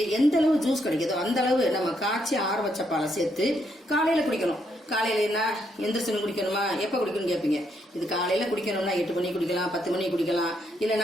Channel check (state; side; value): normal; both; correlation 0.76